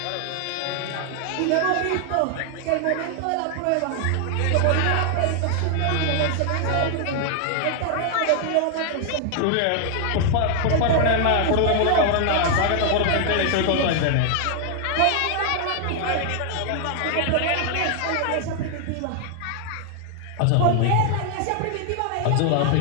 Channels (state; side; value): different; both; correlation 0.00